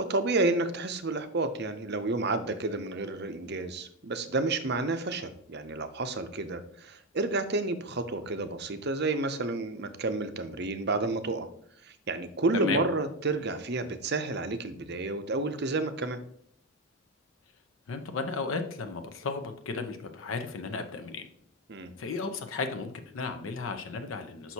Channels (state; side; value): normal; both; correlation 0.11